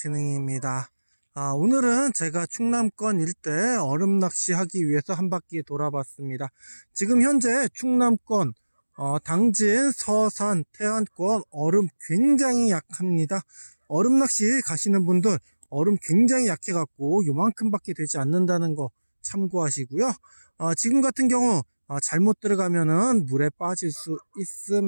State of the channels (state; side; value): inverted; both; correlation -1.00